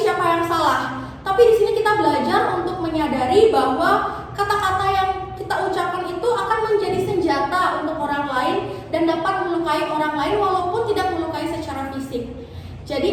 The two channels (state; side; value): identical; both; correlation 1.00